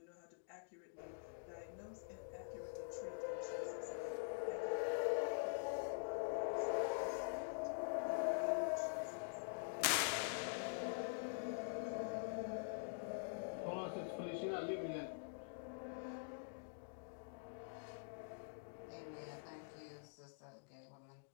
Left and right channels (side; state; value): right; silent; digital silence